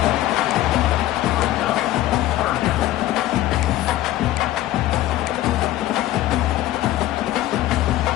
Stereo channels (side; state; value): right; quieter; 14.7 dB